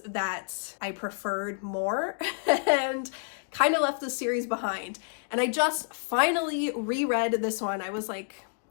that I preferred more and kind of left the series behind. And I just finally reread this one. I was like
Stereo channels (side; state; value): right; silent; digital silence